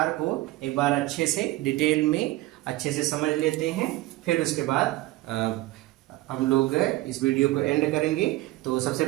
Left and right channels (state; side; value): quieter; left; 18.2 dB